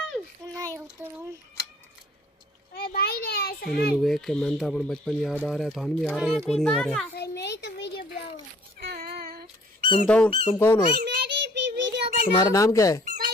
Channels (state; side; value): normal; both; correlation 0.56